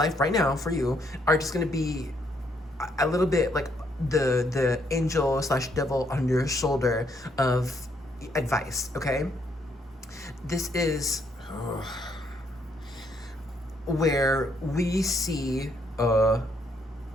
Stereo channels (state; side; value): normal; both; correlation 0.72